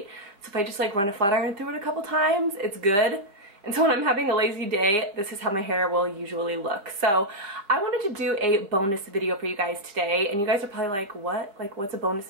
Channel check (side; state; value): left; late; 4.9 ms